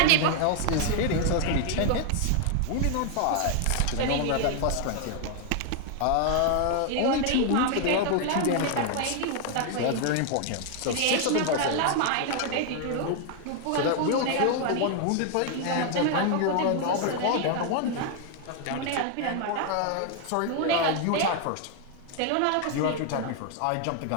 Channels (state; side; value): different; both; correlation 0.00